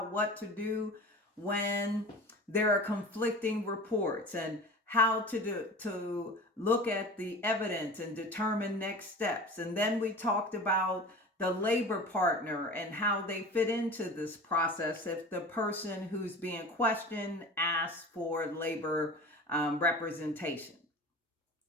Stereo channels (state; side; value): normal; both; correlation 0.36